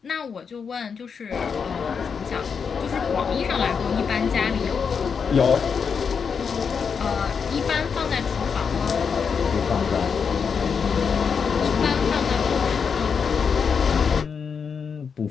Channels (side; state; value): right; quieter; 6.2 dB